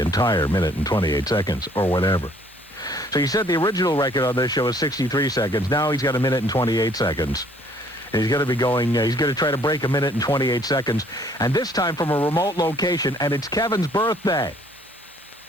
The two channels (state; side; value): normal; both; correlation 0.60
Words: 1 minute and 28 seconds or whatever. So you said the original record on this show is 63 seconds. Now he's got 1 minute and 28 seconds. And he's going to be going, he's going to try to break 1 minute and 28 seconds. And this time from a remote location, and it's Kevin's birthday.